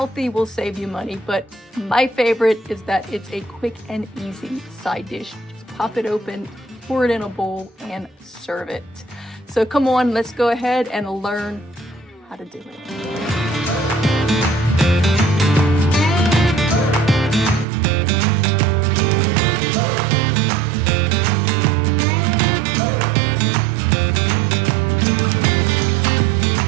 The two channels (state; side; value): drops out; left; at 17.7 s